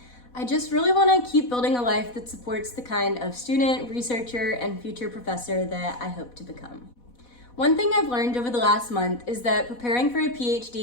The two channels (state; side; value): late; right; 4.1 ms